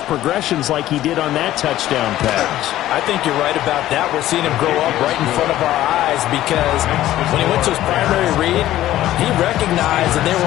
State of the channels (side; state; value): right; quieter; 14.0 dB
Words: progressions like he did on that touchdown pass. I think you're right about that. We're seeing him grow up right in front of our eyes because when he went to his primary read, he recognized that they